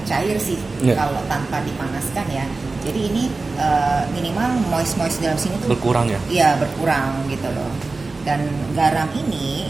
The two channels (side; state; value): left; quieter; 3.7 dB